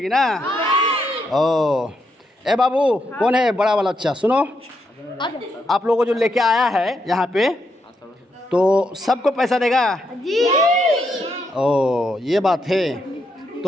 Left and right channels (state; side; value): normal; both; correlation 0.80